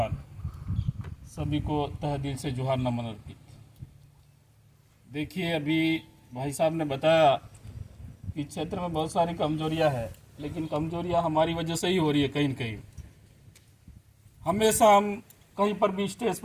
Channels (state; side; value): identical; both; correlation 1.00